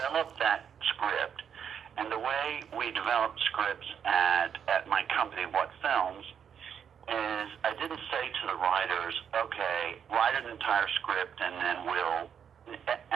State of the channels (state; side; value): quieter; left; 7.9 dB